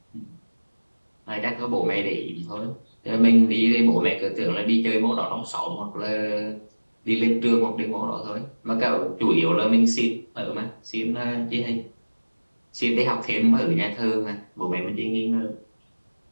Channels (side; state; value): both; inverted; correlation -1.00